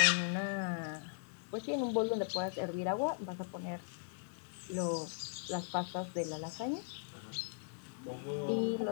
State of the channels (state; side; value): silent; right; 52 dB below the other